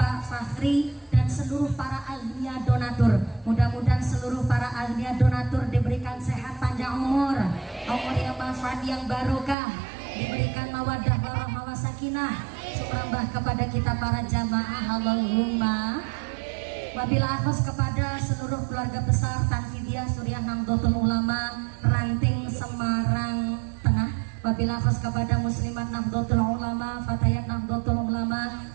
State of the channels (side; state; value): left; drops out; at 9.6 s